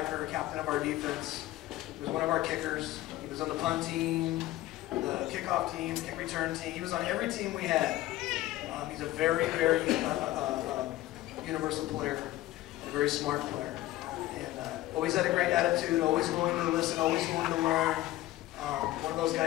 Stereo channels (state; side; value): quieter; right; 16.0 dB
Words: captain of our defense. He was one of our kickers. He was on the punt team, the kickoff team, kick return team. He was on every team we had. He's a very universal player and a very smart player. And always had a great attitude, always willing to listen, always willing to learn. One of those